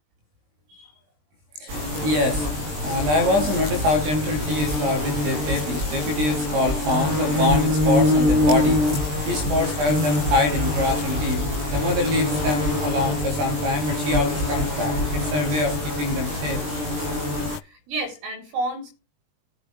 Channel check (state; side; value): late; left; 20 ms